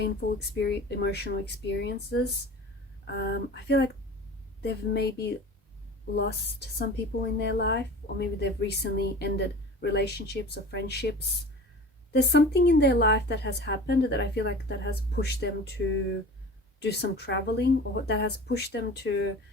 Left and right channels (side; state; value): both; normal; correlation 0.38